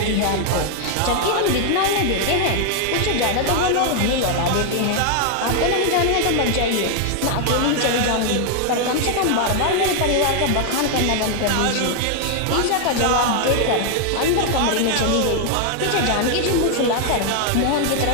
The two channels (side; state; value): both; different; correlation 0.00